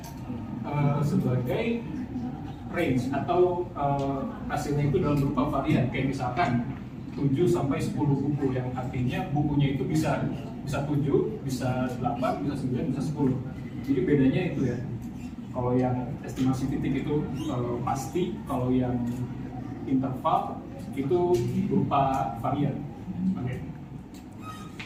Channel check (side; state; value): both; identical; correlation 1.00